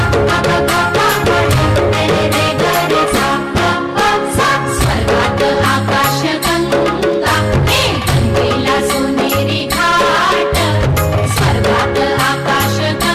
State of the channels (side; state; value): both; identical; correlation 1.00